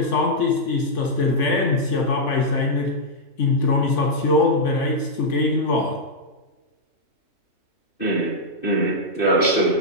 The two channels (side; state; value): right; late; 3.5 ms